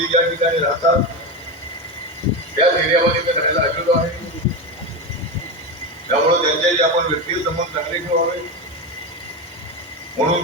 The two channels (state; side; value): normal; both; correlation 0.17